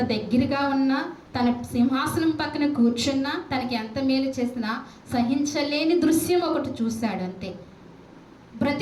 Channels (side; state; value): both; identical; correlation 1.00